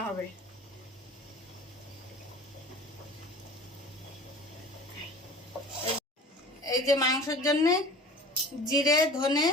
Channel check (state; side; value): normal; both; correlation 0.42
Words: হবে। এই যে মাংসের জন্য জিরে, ধনে,